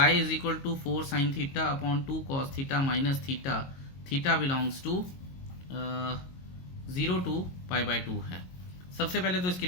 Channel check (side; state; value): right; late; 22 ms